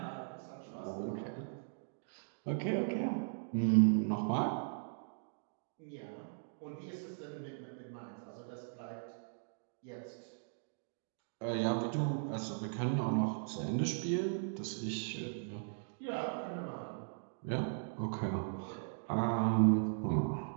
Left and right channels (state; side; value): silent; left; digital silence